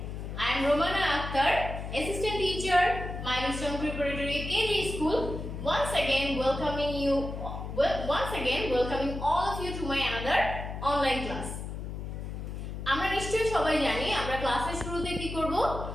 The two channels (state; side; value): noise; left; hum, 7 dB below the sound